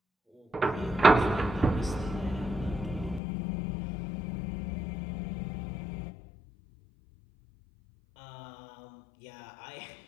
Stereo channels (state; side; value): drops out; right; at 3.2 s